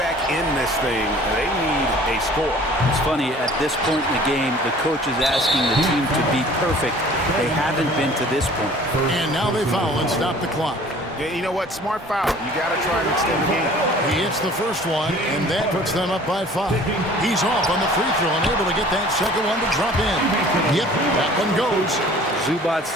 in this thing. They need a score. It's funny, at this point in the game, the coach is asking the team to be perfect. They haven't been to this point. And now they foul and stop the clock. Yeah, you know what? Smart foul. You got to try and extend the game. He hits the first one, and that puts them up by 5. He's off on the free throw and able to get that second one to drop in. Yep, that one goes. Zubac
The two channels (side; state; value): both; normal; correlation 0.49